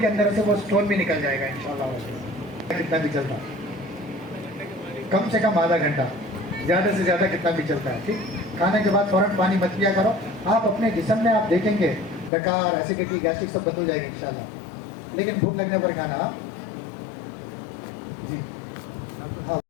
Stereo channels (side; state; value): right; drops out; at 12.3 s